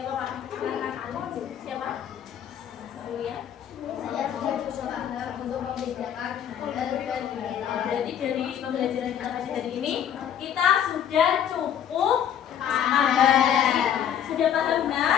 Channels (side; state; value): right; quieter; 9.5 dB